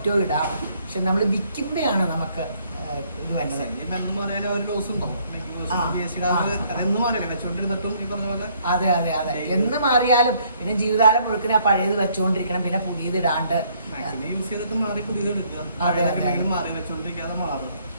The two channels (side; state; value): both; inverted; correlation -0.66